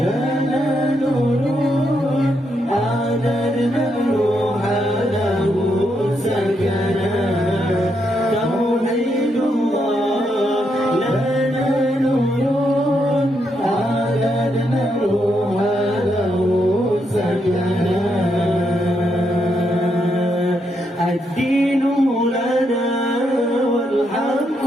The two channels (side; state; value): both; normal; correlation 0.79